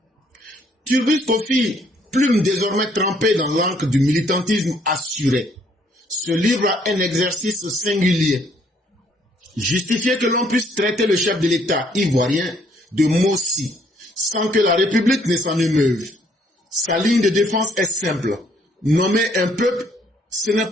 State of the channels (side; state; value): both; normal; correlation 0.66